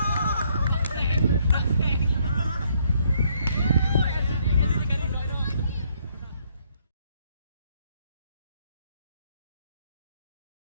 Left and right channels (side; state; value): both; inverted; correlation -0.69